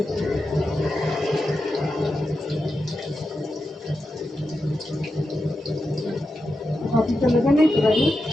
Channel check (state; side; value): normal; both; correlation 0.89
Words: কপিটা লেগে নেই তো গাজর।